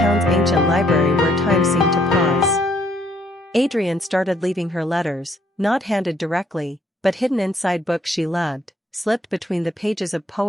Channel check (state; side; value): normal; both; correlation 0.67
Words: ancient library where time seemed to pause. Adrian started leaving her letters, not handed directly, but hidden inside books she loved, slipped between the pages of